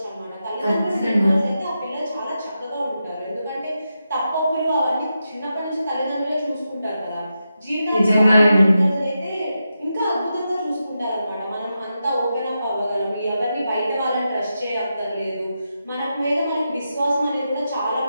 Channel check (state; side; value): inverted; both; correlation -0.88